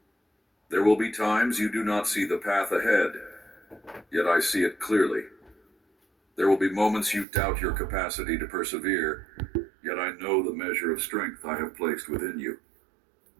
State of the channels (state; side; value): drops out; left; at 7.2 s